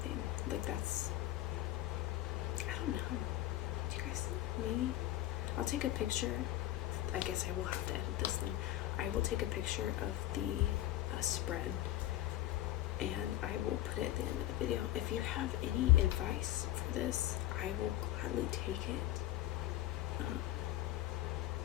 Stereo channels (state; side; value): quieter; right; 14.5 dB